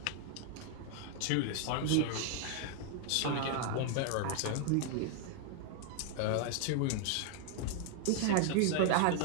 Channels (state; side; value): different; both; correlation 0.00